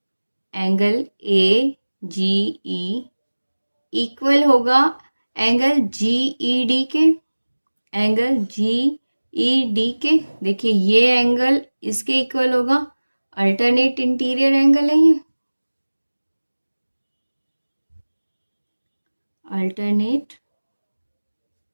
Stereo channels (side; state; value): both; inverted; correlation -1.00